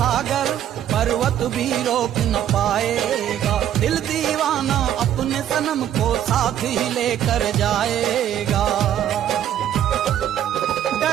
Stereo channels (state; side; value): quieter; left; 10.8 dB